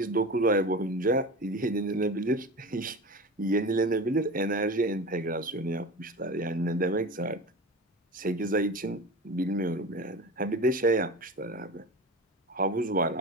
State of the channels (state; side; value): normal; both; correlation 0.30